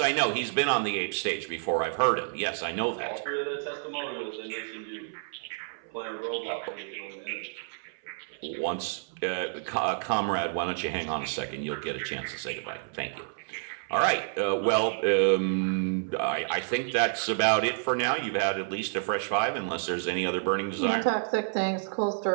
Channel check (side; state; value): left; silent; 58 dB below the other